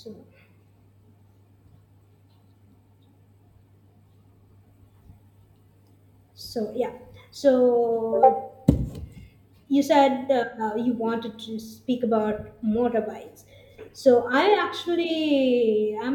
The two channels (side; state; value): both; identical; correlation 1.00